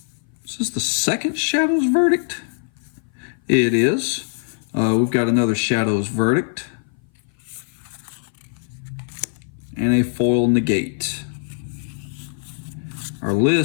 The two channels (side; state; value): right; silent; 58 dB below the other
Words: Is this the second Shadow's Verdict? It is. We've got another Shadow's Verdict, and a foil Negate. Our